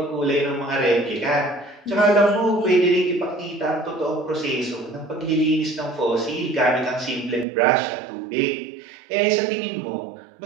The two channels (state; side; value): drops out; left; at 7.5 s